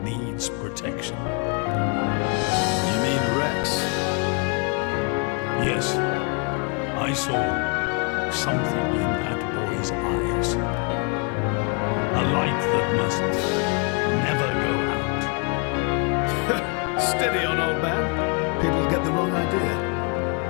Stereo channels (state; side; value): quieter; right; 35.2 dB